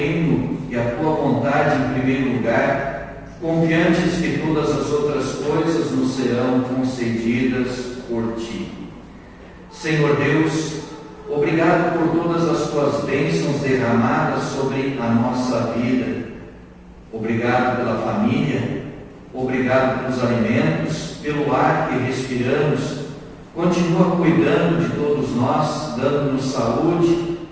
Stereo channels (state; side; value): identical; both; correlation 1.00